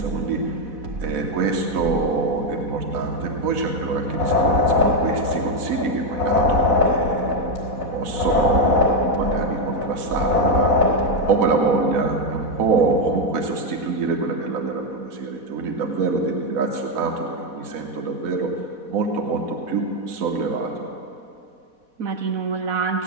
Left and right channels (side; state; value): left; late; 4.1 ms